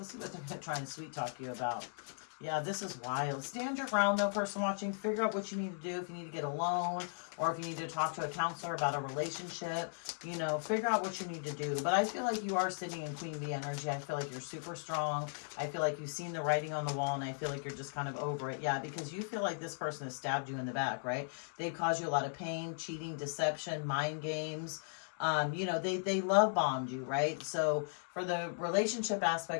see what they're going to try and sweet talk you about. Yeah, this is wild. Stand your ground, though, person watching. Figure out what you need to do. If you need to get a loan or if you need to talk to a counselor about a relationship, you know, figure out what you need to do. But I feel like you are sitting in Queen Bee energy. I feel like you're super strong. I feel like you've seen the writing on the wall, and I feel like you're just kind of over it. Yeah, because you feel like this person has stabbed you in the back, right? They've caused you a lot of pain, cheating, deception, mind games. You know, they love bombed you, right? So for the relationship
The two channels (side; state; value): right; silent; digital silence